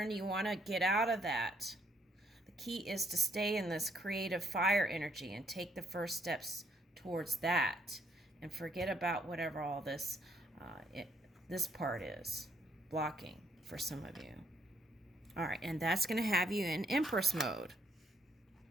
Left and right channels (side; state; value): both; normal; correlation 0.70